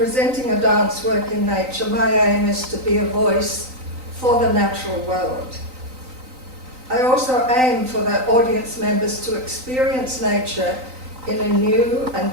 a dance work in nature, my aim is to be a voice for the natural world. I also aim for the audience members to experience nature in a new and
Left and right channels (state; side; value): late; left; 3.9 ms